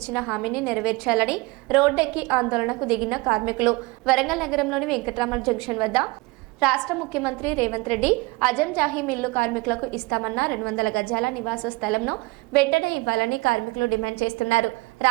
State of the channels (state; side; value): quieter; left; 24.0 dB